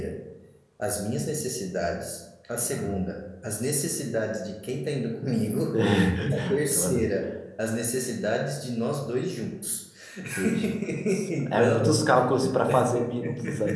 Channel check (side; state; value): both; identical; correlation 1.00